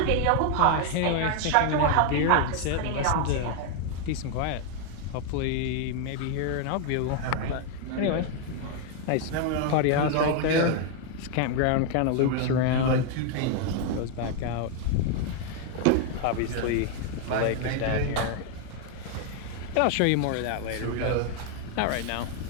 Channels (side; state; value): both; different; correlation 0.00